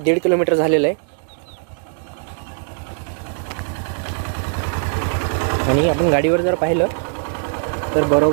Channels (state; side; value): silent; left; digital silence